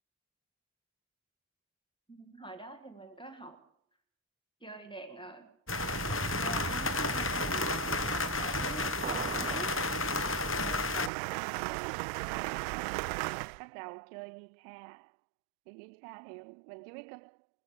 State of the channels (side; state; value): left; drops out; at 11.1 s